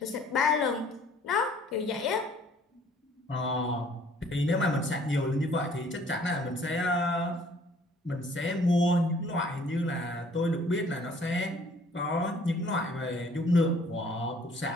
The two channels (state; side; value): normal; both; correlation 0.57